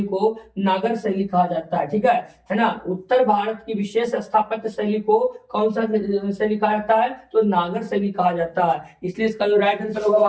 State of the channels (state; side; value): identical; both; correlation 1.00